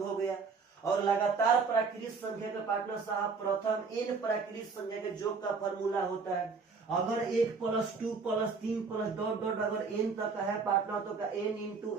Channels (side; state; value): left; quieter; 4.8 dB